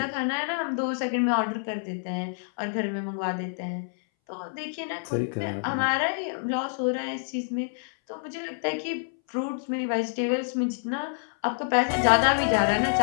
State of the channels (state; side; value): silent; right; 60 dB below the other